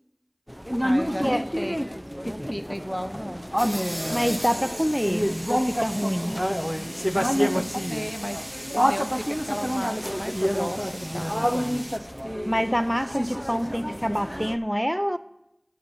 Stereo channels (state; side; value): identical; both; correlation 1.00